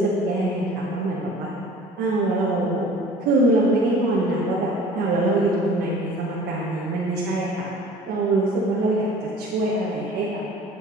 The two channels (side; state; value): both; normal; correlation 0.46